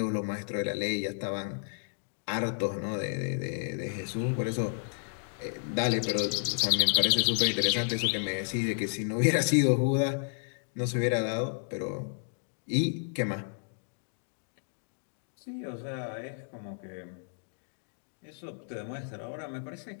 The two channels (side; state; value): right; silent; digital silence